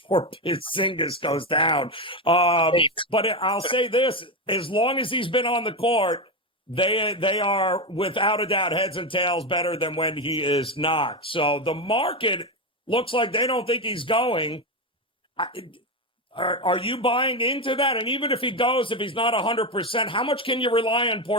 Porzingis goes down. But I'll say this, as long as he's been on the court, they are without a doubt heads and tails better than when he is not. So the market looks like they don't think he's going. Are you buying into that? And even if he goes, if he's not 100%, how much can you rely on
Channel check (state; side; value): normal; both; correlation 0.13